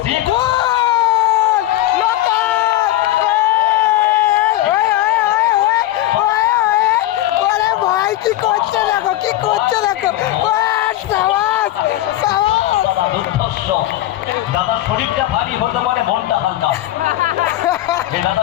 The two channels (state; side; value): quieter; right; 14.8 dB